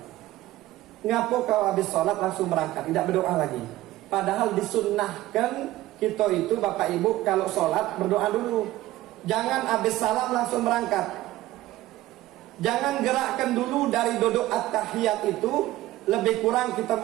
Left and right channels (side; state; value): left; quieter; 16.2 dB